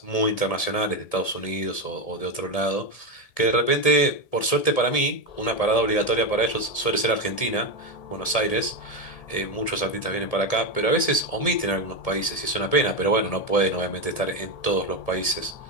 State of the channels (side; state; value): right; late; 1.7 ms